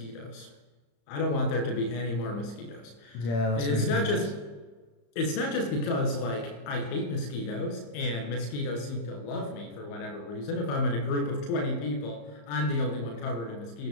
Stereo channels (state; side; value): late; right; 35 ms